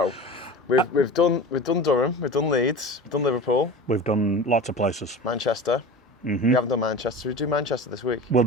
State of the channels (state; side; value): normal; both; correlation 0.34